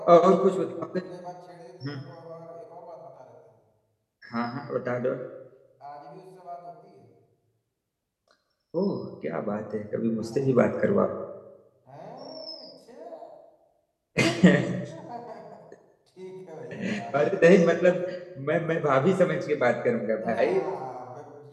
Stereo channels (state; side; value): identical; both; correlation 1.00